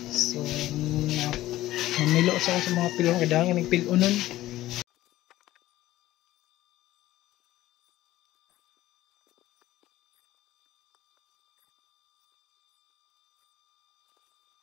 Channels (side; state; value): right; quieter; 15.4 dB